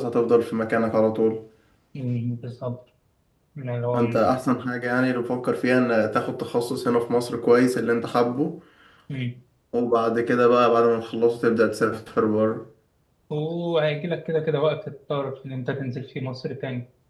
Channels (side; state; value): both; identical; correlation 1.00